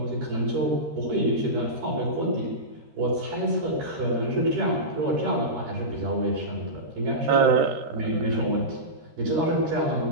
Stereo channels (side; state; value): left; late; 13 ms